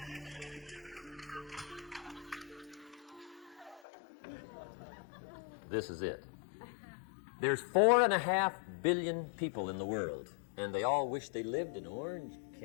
This is it. There's 4.5 billion people in the world, and they all wish they lived in Orange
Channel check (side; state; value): right; drops out; at 3.8 s